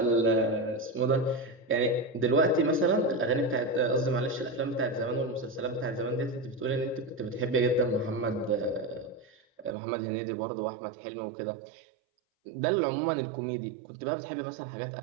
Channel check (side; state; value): left; drops out; at 9.8 s